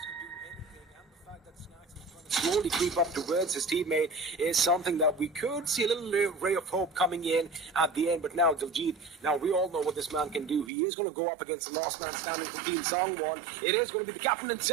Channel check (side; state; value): left; drops out; at 10.7 s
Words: slowly creep up towards his teammate is something that we could see a little ray of hope coming in at the end. But now Diljit, now we all know what this man can do. He is going to go up against the last man standing from Team Songwon. It is going to be the captain